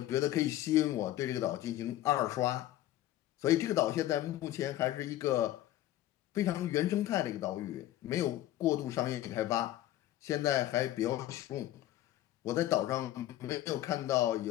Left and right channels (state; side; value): quieter; right; 14.1 dB